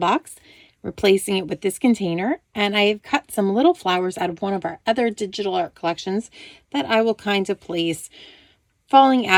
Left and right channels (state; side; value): identical; both; correlation 1.00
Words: replacing it with this container, and I have cut some little flowers out of one of our other digital art collections that I will kind of place falling